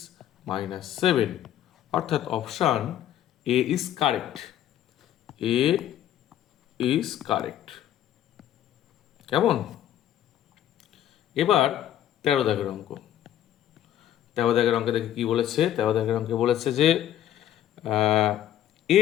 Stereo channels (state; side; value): quieter; right; 11.6 dB